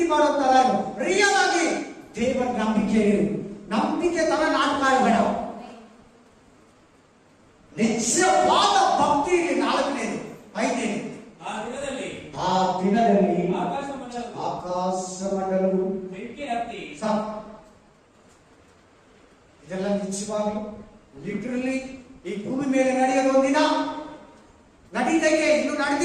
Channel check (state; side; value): identical; both; correlation 1.00